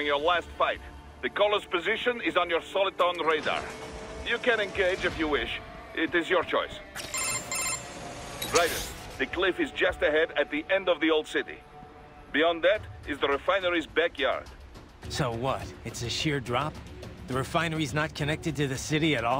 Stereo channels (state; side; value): identical; both; correlation 1.00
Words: your last fight. The caller's position is on your Soliton radar. You can engage if you wish. It is your choice. Raiden, the cliff is just ahead at the end of the old city. Beyond that is the refinery's backyard. So what? It's a sheer drop? The refinery's not connected to the city at